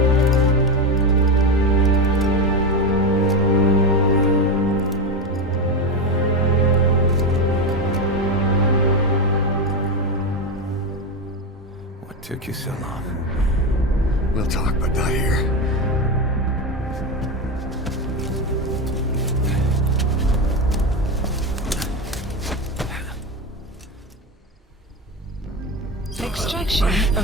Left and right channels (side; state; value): both; normal; correlation 0.15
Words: What took you so long? We'll talk, but not here. Extraction